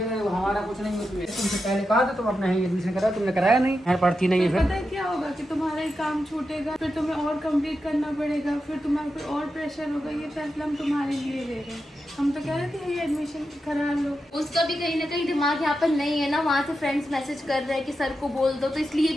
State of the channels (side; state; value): both; normal; correlation 0.88